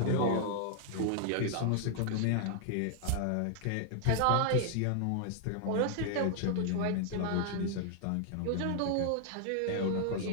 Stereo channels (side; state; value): both; different; correlation 0.00